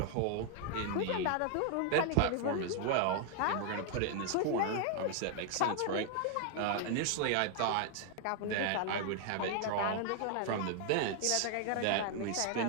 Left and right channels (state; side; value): different; both; correlation 0.00